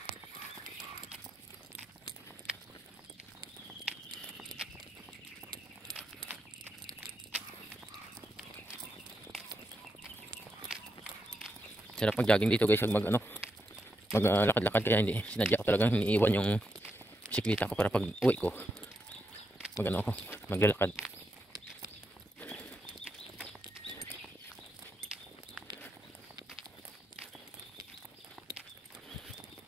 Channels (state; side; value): normal; both; correlation 0.83